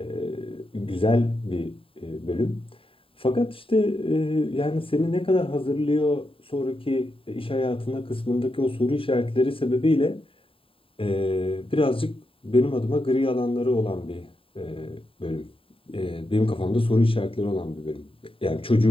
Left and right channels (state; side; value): late; right; 0.26 ms